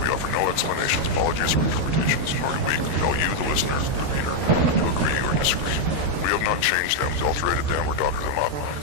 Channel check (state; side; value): late; left; 13 ms